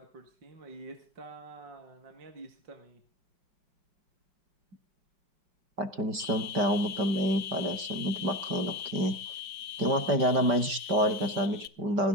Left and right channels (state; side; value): late; left; 5.1 ms